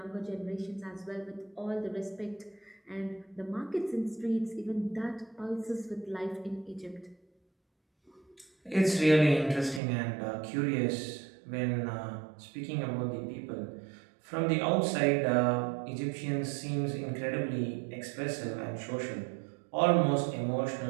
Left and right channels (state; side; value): drops out; left; at 9.8 s